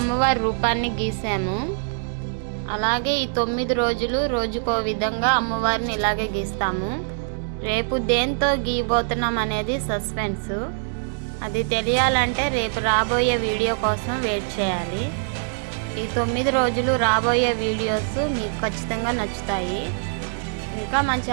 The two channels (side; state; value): left; silent; digital silence